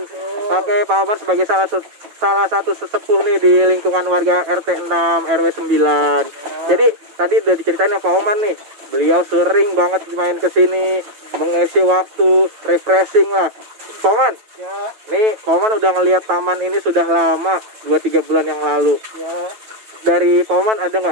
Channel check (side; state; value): left; late; 9.1 ms